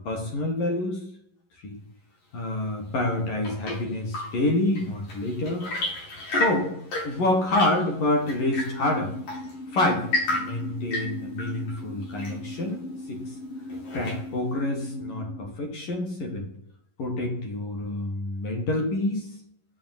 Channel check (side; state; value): right; late; 11 ms